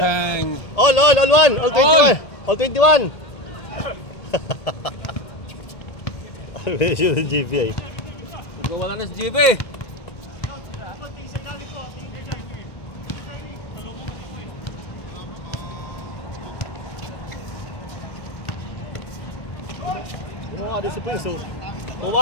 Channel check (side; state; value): right; late; 1.8 ms